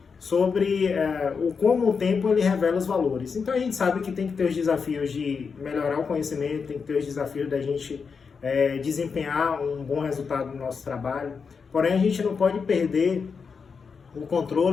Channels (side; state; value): right; quieter; 5.6 dB